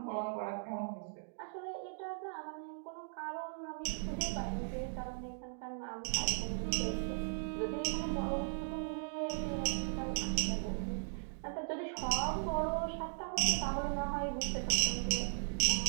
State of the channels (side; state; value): left; silent; digital silence